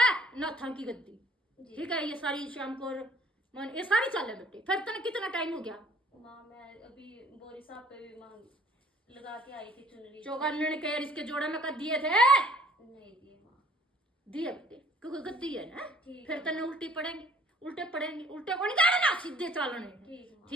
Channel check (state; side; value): normal; both; correlation 0.57